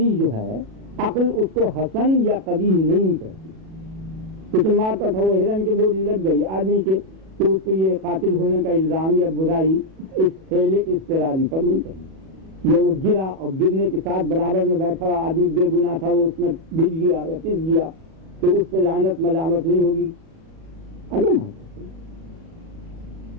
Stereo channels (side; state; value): left; late; 37 ms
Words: جو ہے عقل اس کو حسن یا قبیح نہیں کرتی. کسی مارتا تھا وہ ہرن کے گولی لگ گئی آدمی کے تو اس کو یہ قاتل ہونے کا الزام یا برائی اس فعل اضطراری پر نہیں کرنی. یا وہ گرا اور گرنے کے ساتھ برابر میں بیٹھا ہوا آدمی بے گناہ تھا وہ اس میں بج گیا یا پس گیا تو اس پہ لعنت ملامت نہیں ہوگی. اگر